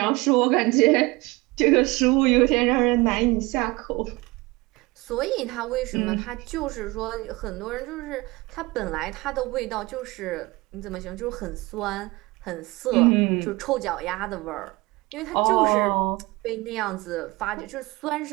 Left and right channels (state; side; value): quieter; left; 22.7 dB